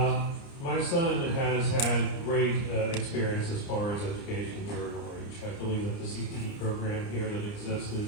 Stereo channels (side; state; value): right; late; 29 ms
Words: My son has had great experience as far as education here in Orange. I believe that the CTE program here that exists